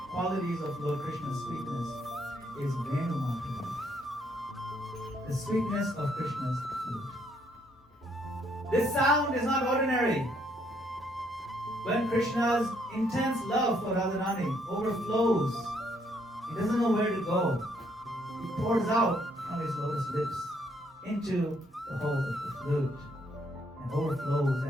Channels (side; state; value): both; normal; correlation 0.70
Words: qualities of Lord Krishna's sweetness is Venu Madhuri, the sweetness of Krishna's flute. This sound is not ordinary. When Krishna's intense love for Radharani overflows, he doesn't know where to go. He pours out from his lotus lips into the hole of the flute and overflows